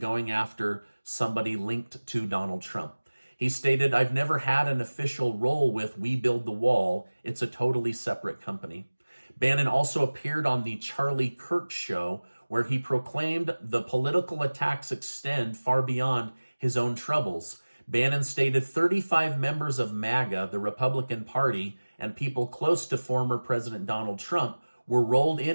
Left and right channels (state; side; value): inverted; both; correlation -1.00